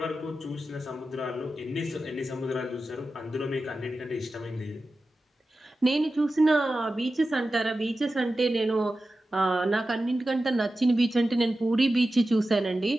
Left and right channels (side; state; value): both; normal; correlation 0.93